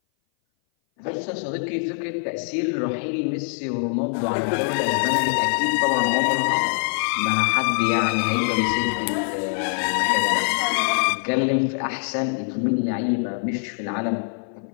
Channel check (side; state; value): right; silent; 58 dB below the other